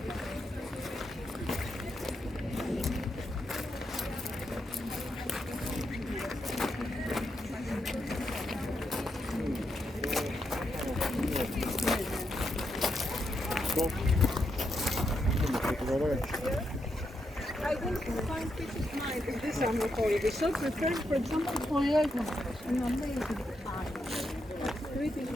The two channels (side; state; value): both; normal; correlation 0.82